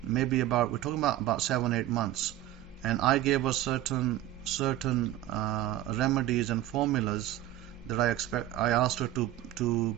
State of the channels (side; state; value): left; quieter; 14.2 dB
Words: Maybe we're talking about 7-8 months, and I gave her certain remedies and formulas that I asked her to do,